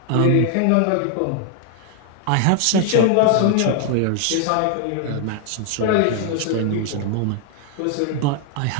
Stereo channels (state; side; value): different; both; correlation 0.00